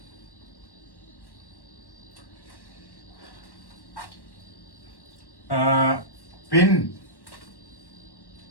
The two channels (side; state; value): right; late; 1.1 ms